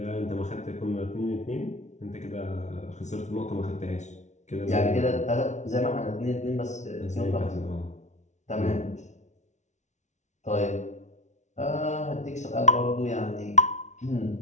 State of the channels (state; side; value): late; right; 0.34 ms